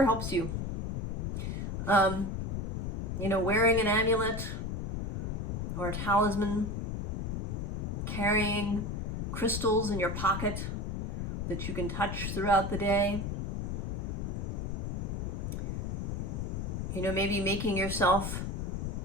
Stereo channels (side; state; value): left; noise; rumble, 2 dB below the sound